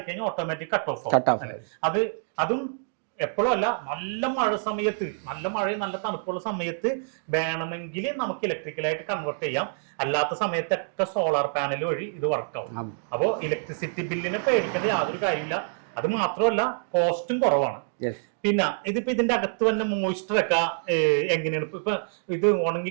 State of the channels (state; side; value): silent; left; digital silence